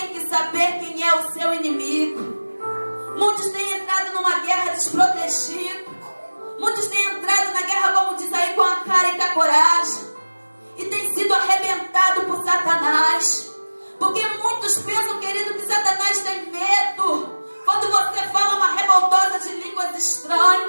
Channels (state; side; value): inverted; both; correlation -1.00